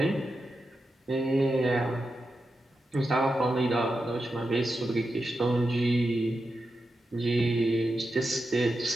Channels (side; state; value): both; normal; correlation 0.89